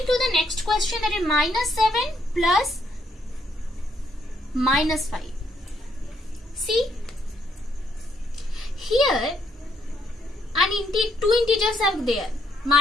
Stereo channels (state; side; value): normal; both; correlation 0.74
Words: the next question, that is minus 7 plus minus 5. See, here two integers are there.